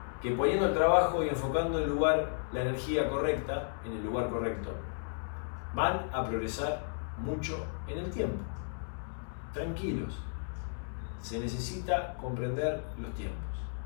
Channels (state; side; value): silent; right; digital silence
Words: Que poniendo el trabajo y enfocando el lugar, la energía correcta, en el lugar correcto, van a progresar mucho en el tiempo. Tranquilos. Se necesita comprender los tiempos.